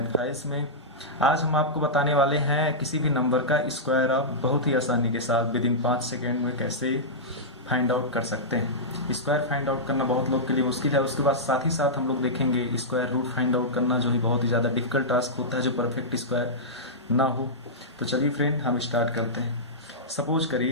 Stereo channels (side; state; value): both; normal; correlation -0.13